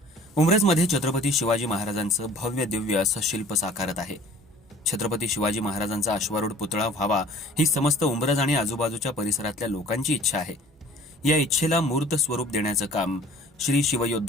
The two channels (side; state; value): both; normal; correlation 0.49